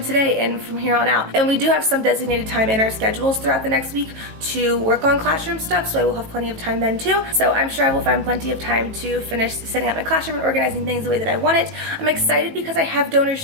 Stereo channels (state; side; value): late; left; 18 ms